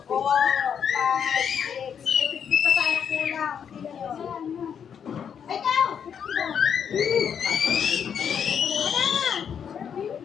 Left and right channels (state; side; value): quieter; right; 7.8 dB